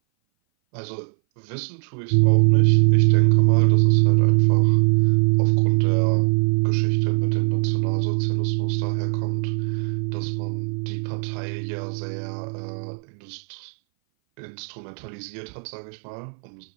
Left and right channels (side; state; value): left; silent; 60 dB below the other